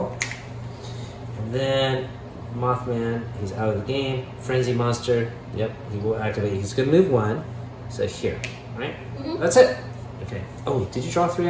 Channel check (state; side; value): identical; both; correlation 1.00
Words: And then Mothman, he's out of the game. Frenzy Monster, yep, he will activate. He's gonna move 1. So here, right? Mhm. That's it. Okay. Oh, did you draw 3